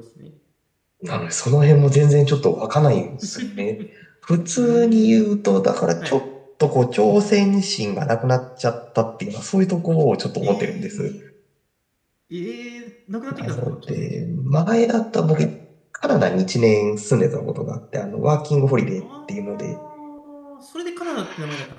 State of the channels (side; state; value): both; identical; correlation 1.00